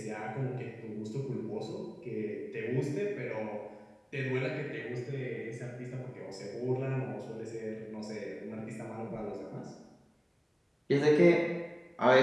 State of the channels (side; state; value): both; identical; correlation 1.00